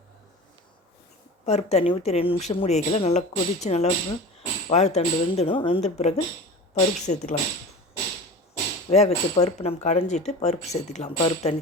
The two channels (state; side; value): normal; both; correlation 0.34